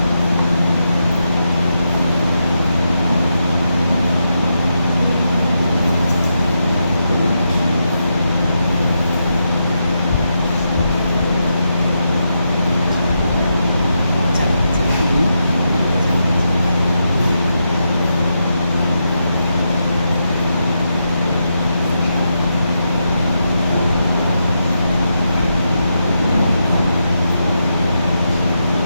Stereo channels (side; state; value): both; inverted; correlation -0.85